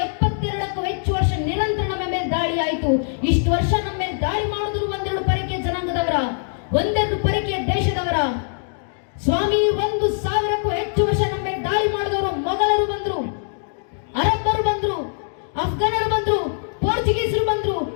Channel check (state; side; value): silent; right; digital silence